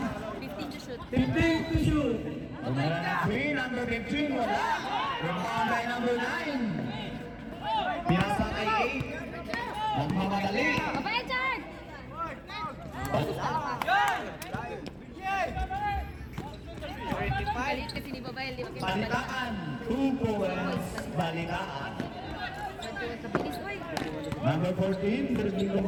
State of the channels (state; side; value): identical; both; correlation 1.00